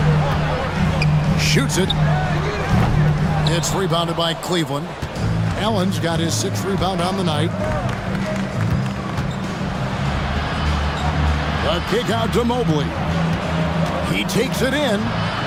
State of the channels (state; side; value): identical; both; correlation 1.00